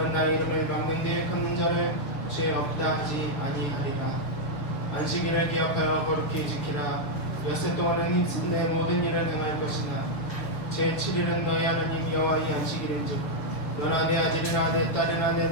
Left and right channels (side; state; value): right; late; 6.9 ms